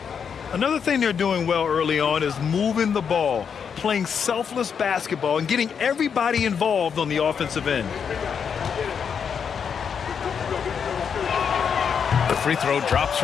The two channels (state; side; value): quieter; right; 6.9 dB